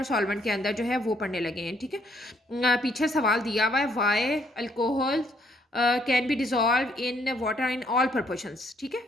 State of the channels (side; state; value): both; normal; correlation 0.68